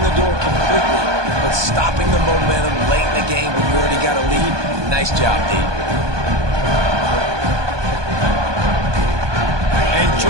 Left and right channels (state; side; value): late; left; 1.2 ms